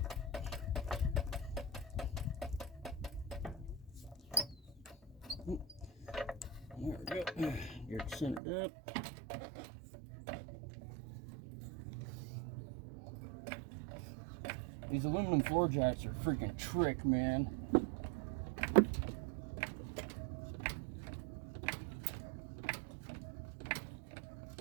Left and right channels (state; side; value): drops out; left; at 8.4 s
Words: There we go. Get it centered up. These aluminum floor jacks are freaking trick, man.